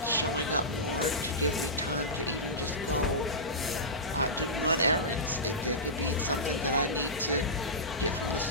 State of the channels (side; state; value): both; normal; correlation -0.16